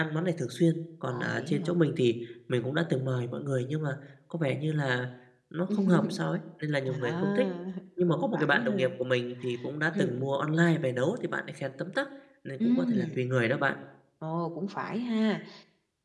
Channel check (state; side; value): identical; both; correlation 1.00